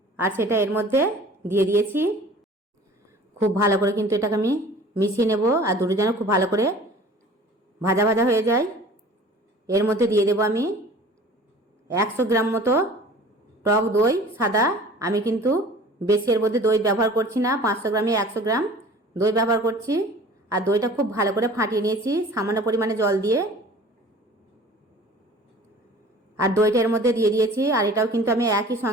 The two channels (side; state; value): both; normal; correlation 0.45